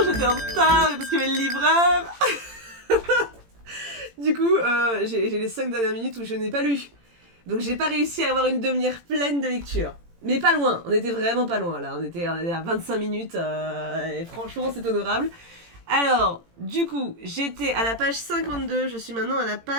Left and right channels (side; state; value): left; late; 18 ms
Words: j'étais en retard parce qu'il y avait le livreur. Du coup, j'ai les 5 dernières minutes où je n'ai pas lu. Donc j'ai pas réussi à avoir une demi-heure pleine de lecture. Mais pas loin, on était vraiment pas loin là. On était à 25 minutes et franchement c'est honorable. Alors, du coup, j'étais à la page 52, je suis maintenant à la